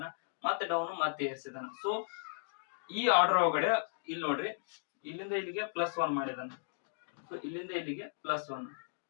ಮತ್ತೆ ಡೌನ್, ಮತ್ತೆ ಏರ್ಸಿದಾನ. ಸೊ ಈ ಆರ್ಡರ್ ಒಳಗಡೆ ಇಲ್ಲಿ ನೋಡ್ರಿ, ಇಲ್ಲಿಂದ ಇಲ್ಲಿಗೆ +1 ಮಾಡಿದಾನ. ಸೊ ಇಲ್ಲಿಂದ ಇಲ್ಲಿಗೆ +1,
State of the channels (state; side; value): silent; right; digital silence